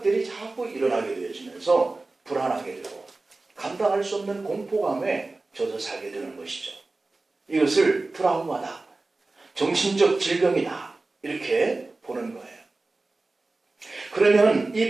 자꾸 일어나게 되어지면서 불안하게 되고 감당할 수 없는 공포감에 젖어 살게 되는 것이죠. 이것을 트라우마다, 정신적 질병이다, 이렇게 보는 거예요. 그러면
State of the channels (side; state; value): left; quieter; 3.3 dB